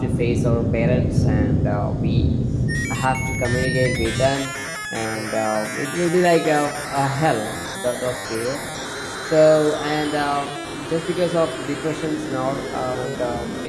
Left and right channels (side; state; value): both; identical; correlation 1.00